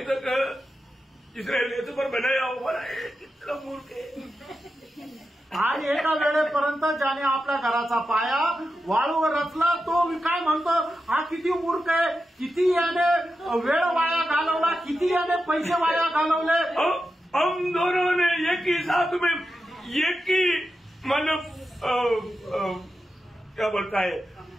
तक जिसने रेत पर बनाया हुआ कितना मूर्ख है. आणि एका वेळेपर्यंत ज्याने आपल्या घराचा पाया वाळूवर रचला तो काय म्हणतो, हा किती मूर्ख आहे, किती याने वेळ वाया घालवला, किती याने पैसे वाया घालवले. हम दोनों ने एक ही साथ में एक ही मतलब क्या बोलता है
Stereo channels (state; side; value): normal; both; correlation 0.90